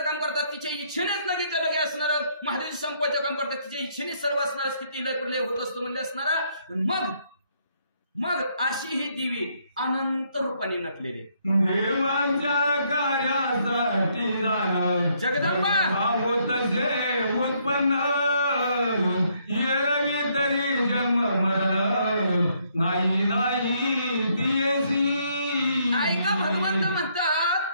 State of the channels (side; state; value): both; inverted; correlation -0.70